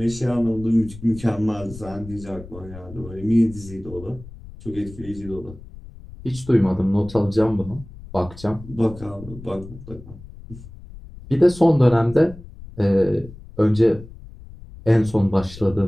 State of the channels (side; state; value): left; noise; rumble, 16 dB below the sound